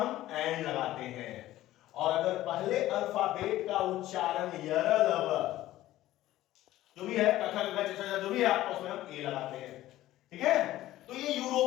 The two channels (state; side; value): quieter; right; 15.1 dB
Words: एन लगाते हैं, और अगर पहले अल्फाबेट का उच्चारण यरल जो भी है, जो भी है आपको उसमें हम ए लगाते हैं, ठीक है। तो ये